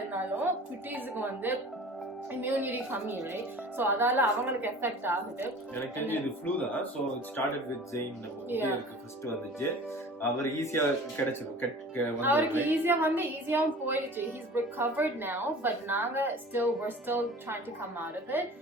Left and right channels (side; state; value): both; normal; correlation 0.42